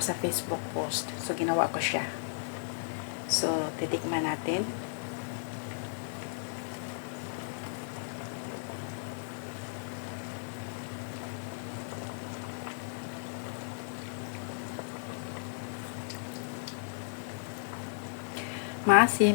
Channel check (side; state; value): right; silent; digital silence